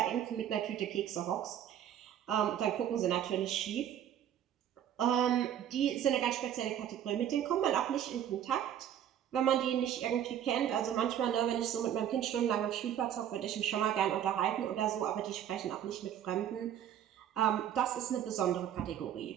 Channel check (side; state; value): left; quieter; 10.2 dB